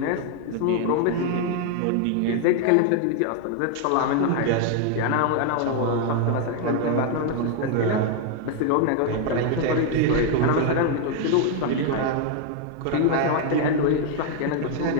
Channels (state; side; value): different; both; correlation 0.00